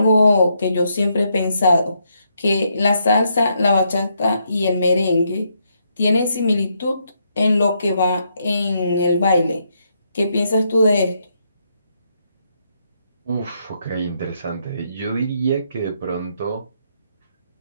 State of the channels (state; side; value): inverted; both; correlation -0.77